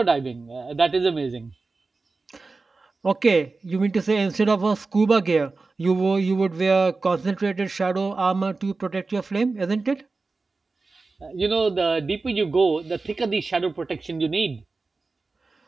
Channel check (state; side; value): quieter; left; 3.9 dB